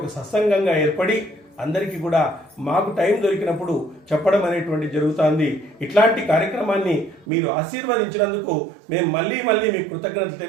సత్సంగంగా ఏర్పడి అందరికీ కూడా మాకు టైం దొరికినప్పుడు చెప్పడం అనేటువంటి జరుగుతుంది. ఇట్లాంటి కార్యక్రమాన్ని మీరు ఆశీర్వదించినందుకు మేము మళ్ళీ మీకు కృతజ్ఞతలు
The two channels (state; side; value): drops out; left; at 7.2 s